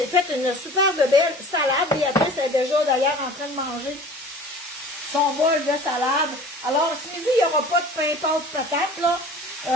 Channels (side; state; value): both; normal; correlation 0.43